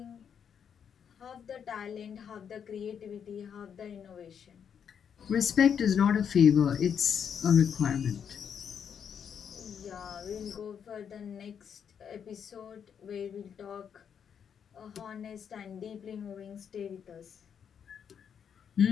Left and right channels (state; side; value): quieter; right; 7.7 dB